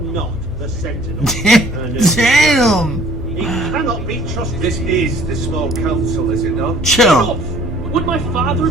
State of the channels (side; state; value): both; normal; correlation 0.55